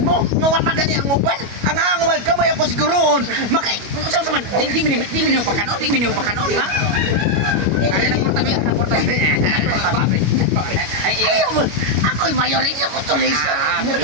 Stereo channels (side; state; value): left; late; 25 ms